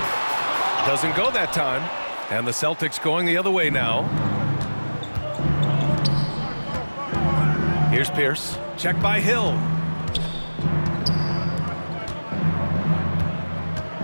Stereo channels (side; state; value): both; inverted; correlation -1.00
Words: Doesn't go that time. And the Celtics going the other way now. Here's Pierce. Checked by Hill.